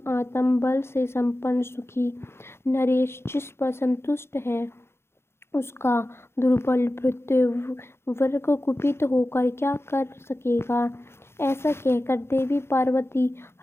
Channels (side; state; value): right; late; 0.12 ms